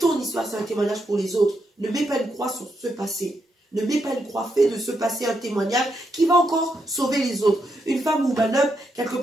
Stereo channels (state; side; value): normal; both; correlation 0.81